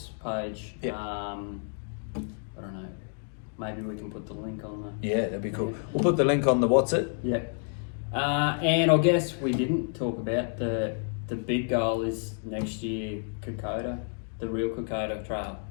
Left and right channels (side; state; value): right; silent; 57 dB below the other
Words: page. Yep. I don't know. Maybe we can put the link on the. Yeah, that'd be cool. We'll put the link on the what's it. Yep. And I guess we didn't talk about the big goal is next year Kokoda, the real Kokoda Trail